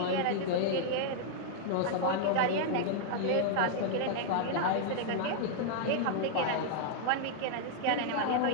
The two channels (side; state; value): both; different; correlation -0.01